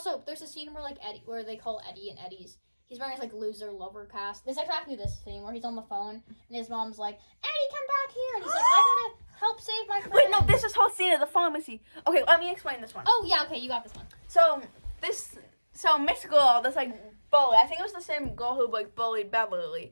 there's a scene where they call Eddie and Eddie's. He's wearing his like loser lover cast. There's exactly this scene where he's on the phone and his mom's like, Eddie, come back here, and he's like, I gotta help save my friend. Wait, no, this is whole scene at the pharmacy. Okay, let me explain this one. Oh yeah, okay, you got this one. So Miss Girl, this like bully. I think it was the same girl who like bullied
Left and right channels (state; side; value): inverted; both; correlation -1.00